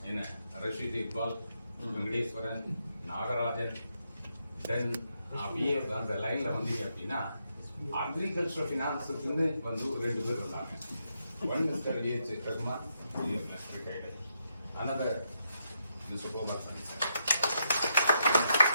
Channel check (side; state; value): both; inverted; correlation -0.80